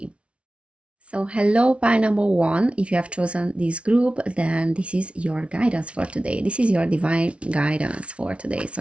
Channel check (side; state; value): left; late; 0.061 ms